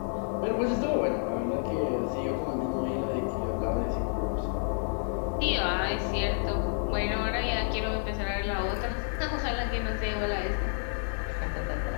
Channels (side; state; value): right; silent; 58 dB below the other